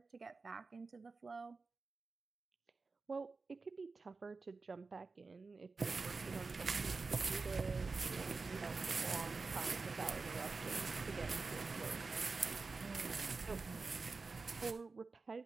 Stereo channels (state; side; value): quieter; left; 4.1 dB